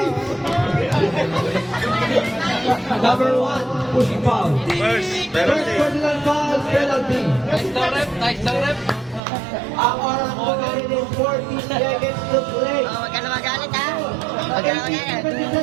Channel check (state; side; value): drops out; left; at 9.2 s